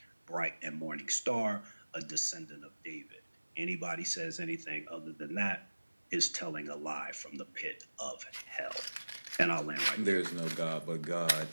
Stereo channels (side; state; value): both; inverted; correlation -1.00